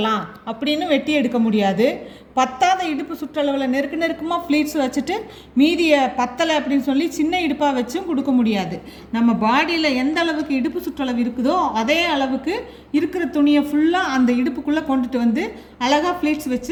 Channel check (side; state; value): both; identical; correlation 1.00